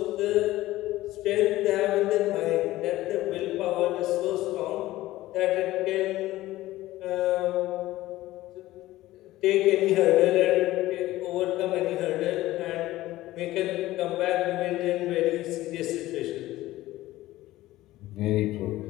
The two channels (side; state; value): right; quieter; 16.5 dB